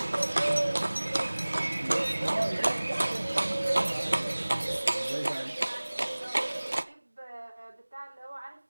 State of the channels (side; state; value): both; inverted; correlation -1.00